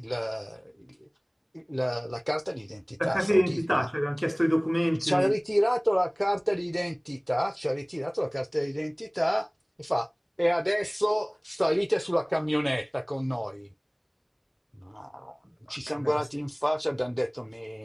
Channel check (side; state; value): both; identical; correlation 1.00